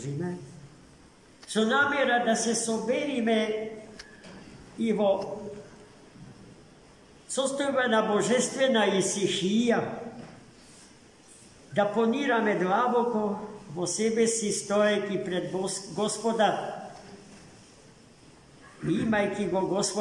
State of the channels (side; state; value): both; identical; correlation 1.00